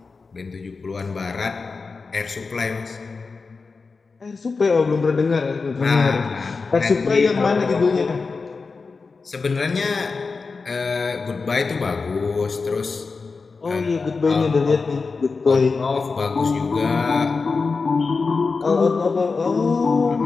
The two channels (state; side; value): quieter; right; 4.4 dB